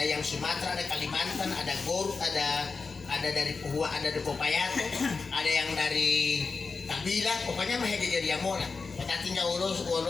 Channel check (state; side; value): quieter; right; 4.5 dB